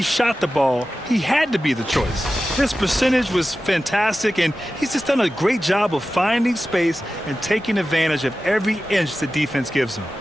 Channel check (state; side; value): normal; both; correlation 0.94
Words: shot the ball, he had to be the choice. His percentage was fantastic, and he's just done a great job of finding space and taking advantage of every inch the defense gives him.